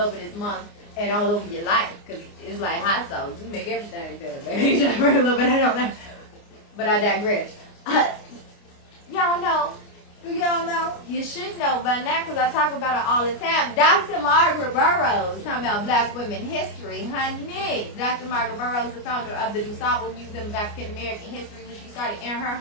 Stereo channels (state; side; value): late; right; 29 ms